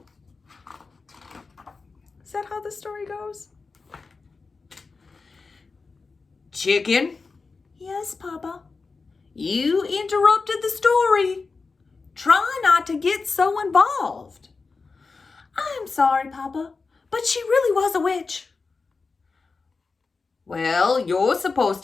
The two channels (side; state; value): right; quieter; 4.3 dB